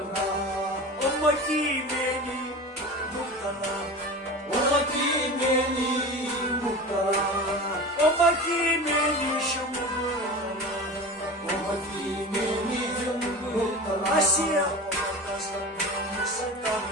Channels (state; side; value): normal; both; correlation 0.32